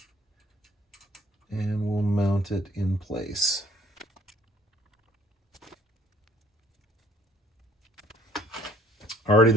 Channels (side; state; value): both; normal; correlation 0.57